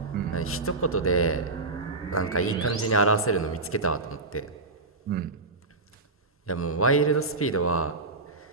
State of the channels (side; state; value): left; quieter; 3.3 dB